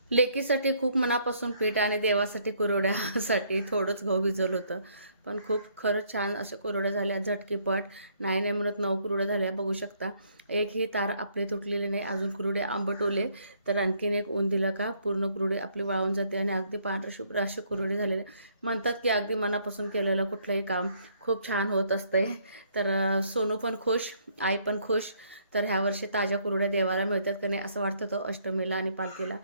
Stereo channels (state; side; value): inverted; both; correlation -0.67